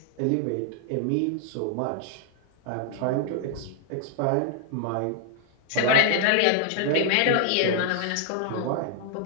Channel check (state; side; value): different; both; correlation 0.00